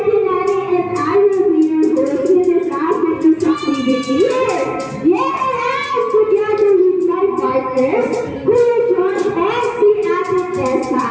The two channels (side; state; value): both; identical; correlation 1.00